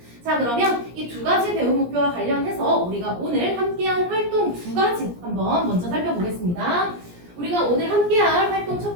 자, 그러면 이 2가지 배움 목표와 관련해서 우리가 오늘 함께한 활동 2가지 한번 먼저 살펴보겠습니다. 우리가 오늘 함께할 활동 첫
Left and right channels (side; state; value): left; late; 17 ms